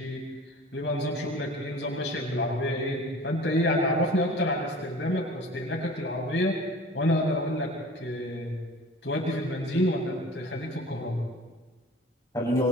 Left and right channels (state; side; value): normal; both; correlation 0.43